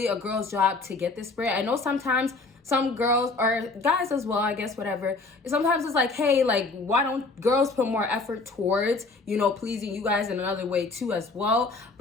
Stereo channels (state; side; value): quieter; right; 3.6 dB